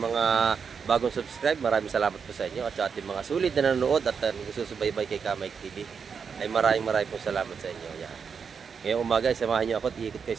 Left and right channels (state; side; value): quieter; left; 6.2 dB